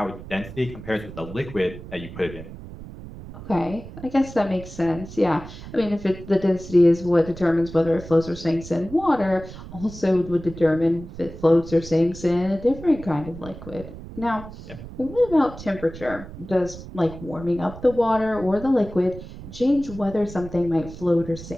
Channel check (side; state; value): right; noise; rumble, 14 dB below the sound